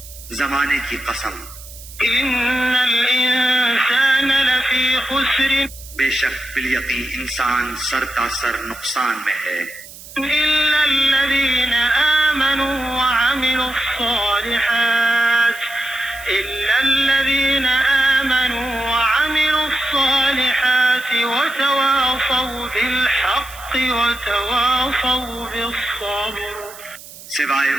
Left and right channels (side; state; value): right; noise; hiss, 17 dB below the sound